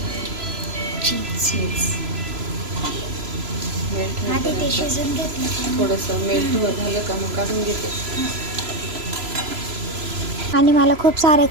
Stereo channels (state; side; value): late; left; 3.0 ms